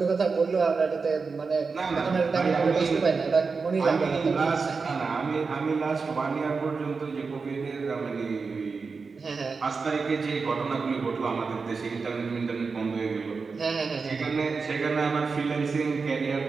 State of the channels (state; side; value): quieter; left; 4.7 dB